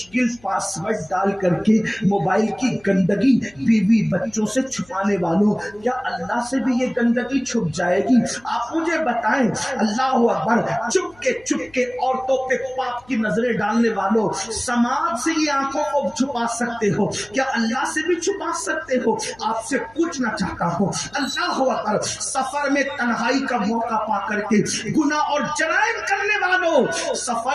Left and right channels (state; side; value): noise; left; hum, 28 dB below the sound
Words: پاسورڈ ڈال کر کے موبائل کی گندگی بیوی بچوں سے چھپانے والوں، کیا اللہ سے بھی یہ گندگی چھپ جائے گی؟ آپ مجھے بتائیں. اللہ اکبر. چپ کے عورتوں پہ پاپ کی نظریں ڈالنے والوں، سماج سے یہ آنکھوں کو چھپا سکتے ہو، کیا اللہ سے بھی چھپا سکتے ہو؟ آپ سے پوچھنا چاہتا ہوں اللہ اکبر، سفر میں تنہائی کا موقع پا کر کے گناہ اور جرائم کرنے والوں،